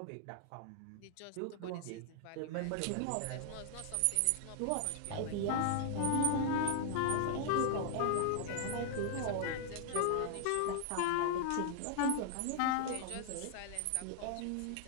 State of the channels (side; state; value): both; different; correlation 0.00